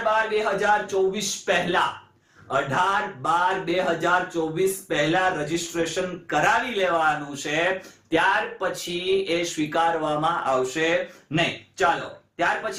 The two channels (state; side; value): identical; both; correlation 1.00